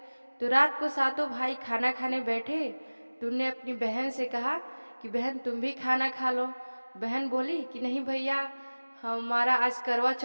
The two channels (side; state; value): both; inverted; correlation -1.00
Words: तो रात को 7 भाई खाना खाने बैठे तो उनने अपनी बहन से कहा कि बहन तुम भी खाना खा लो। बहन बोली कि नहीं भैया, हमारा आज करवा